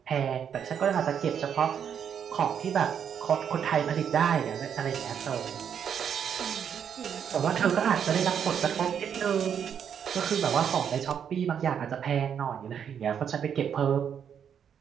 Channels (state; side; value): quieter; left; 8.1 dB